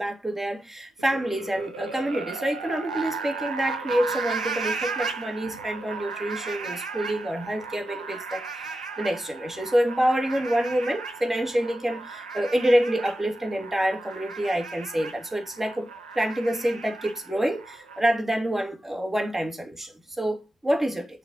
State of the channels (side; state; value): both; normal; correlation 0.90